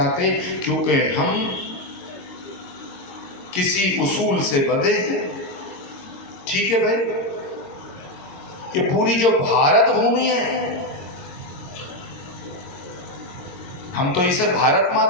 क्योंकि हम किसी उसूल से बंधे हैं। ठीक है भाई, ये पूरी जो भारत भूमि है, हम तो इसे भारत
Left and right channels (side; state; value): right; late; 22 ms